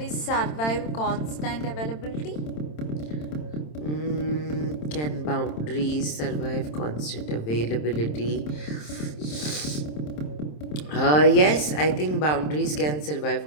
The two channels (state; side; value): late; right; 27 ms